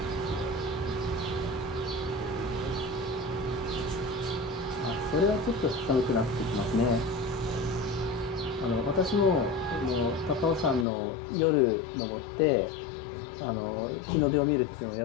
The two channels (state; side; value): drops out; right; at 10.9 s